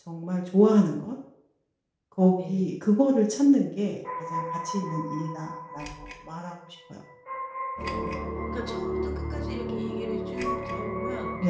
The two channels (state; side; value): identical; both; correlation 1.00